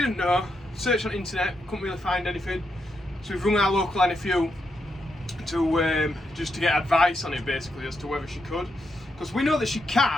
know. Searched on the internet, couldn't really find anything. So we've rung our local NFU to just to get advice on it, basically, as to whether she could. Because we know that she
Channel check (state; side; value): normal; both; correlation 0.82